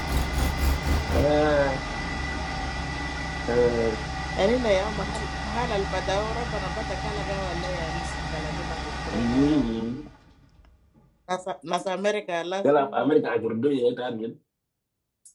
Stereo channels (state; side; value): identical; both; correlation 1.00